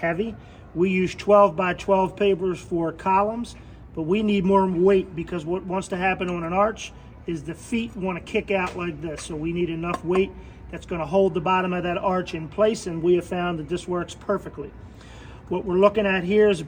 We use 12 by 12 pavers for columns, but we need more weight, because what wants to happen on an arch is the feet want to kick out like this. So we need enough weight that's going to hold the bottom of that arch in place, and we have found that this works perfectly. What we're looking at here is a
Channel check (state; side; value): identical; both; correlation 1.00